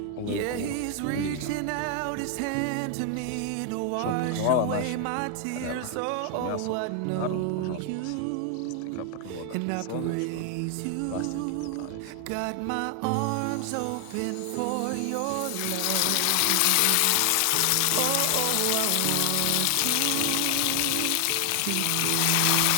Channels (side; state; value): both; different; correlation 0.00